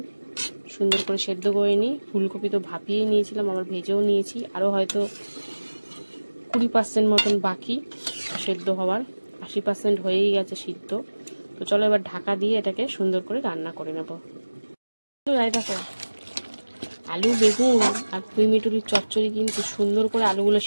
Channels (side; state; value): both; inverted; correlation -1.00